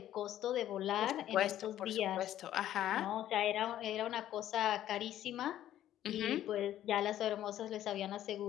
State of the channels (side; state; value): right; quieter; 12.2 dB